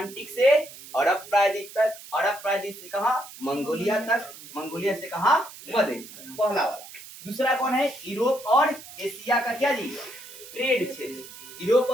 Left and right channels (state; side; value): noise; right; hiss, 16 dB below the sound